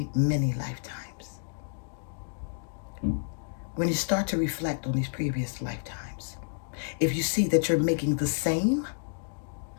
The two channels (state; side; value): silent; right; digital silence